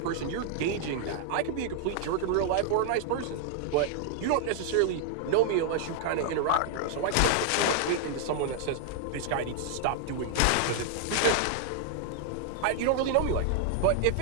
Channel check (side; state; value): both; different; correlation -0.01